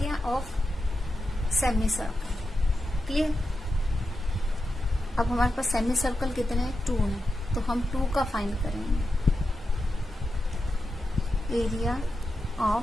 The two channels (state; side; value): normal; both; correlation 0.89